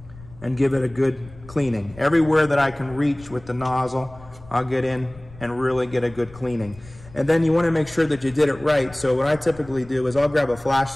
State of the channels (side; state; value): left; noise; rumble, 20 dB below the sound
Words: and give it a good cleaning. Everywhere that I can reach with the nozzle, I'll get in and really get a good cleaning. And then you want to make sure that you did it right. So what I typically do is I'll grab a